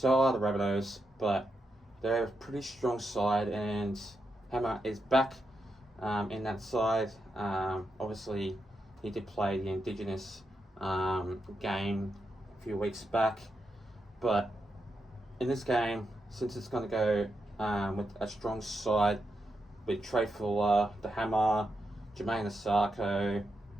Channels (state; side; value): normal; both; correlation 0.85